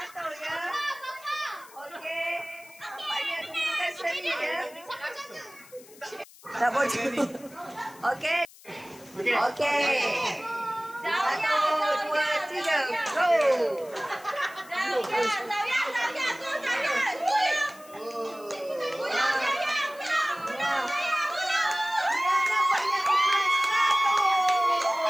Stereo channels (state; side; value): noise; left; hiss, 22 dB below the sound